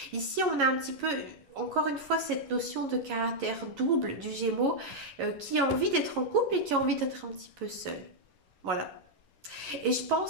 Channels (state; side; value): late; left; 11 ms